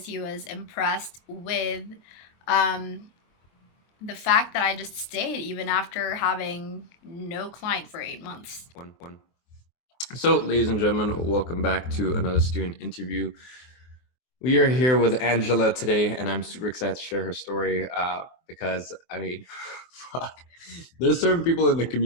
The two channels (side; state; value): right; late; 24 ms